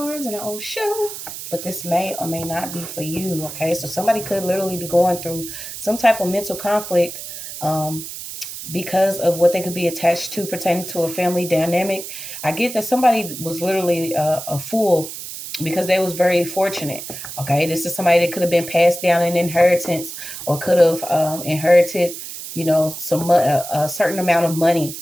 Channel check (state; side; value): noise; right; hiss, 10 dB below the sound